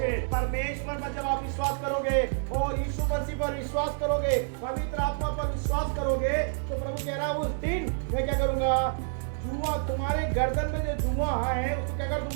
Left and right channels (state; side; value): silent; left; digital silence